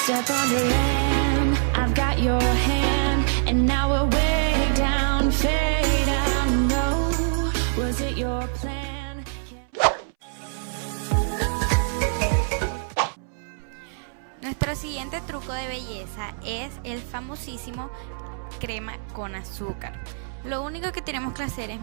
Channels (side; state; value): left; silent; 62 dB below the other